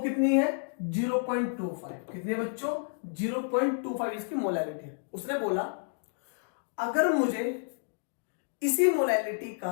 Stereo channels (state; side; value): silent; right; digital silence